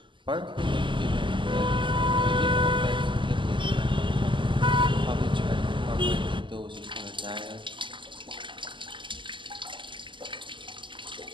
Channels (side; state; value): left; late; 0.24 ms